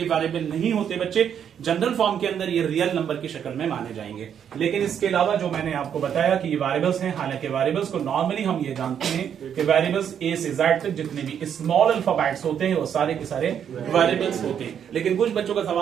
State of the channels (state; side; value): quieter; left; 8.5 dB